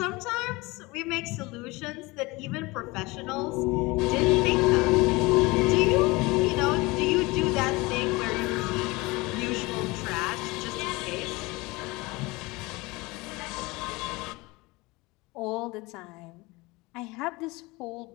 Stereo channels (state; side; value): quieter; right; 23.2 dB